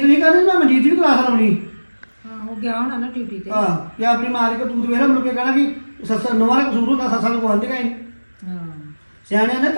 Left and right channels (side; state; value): both; inverted; correlation -1.00